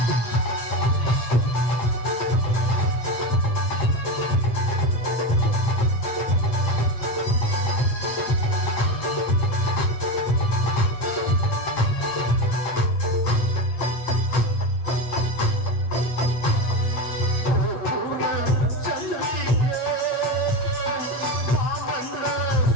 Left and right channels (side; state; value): right; late; 8.6 ms